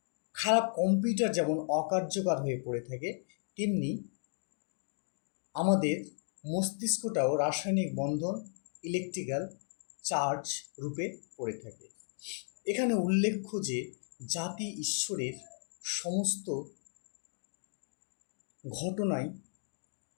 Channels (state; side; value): silent; right; digital silence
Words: খারাপ কম্পিউটার যেমন অকার্যকর হয়ে পড়ে থাকে, তেমনি আমাদের মস্তিষ্কটাও রাসায়নিক বন্ধন, ইলেকট্রিক্যাল চার্জ রূপে পড়ে থাকে। এখানে উল্লেখ্য যে জাতি ঈশ্বরের সমস্ত ঘটনাই